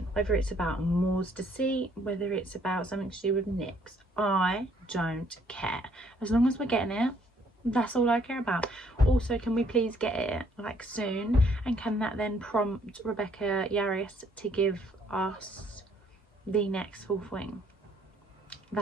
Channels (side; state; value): both; normal; correlation 0.65